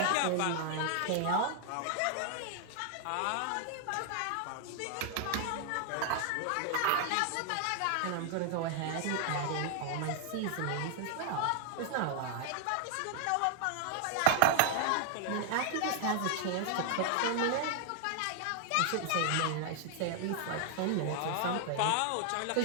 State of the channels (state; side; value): different; both; correlation 0.00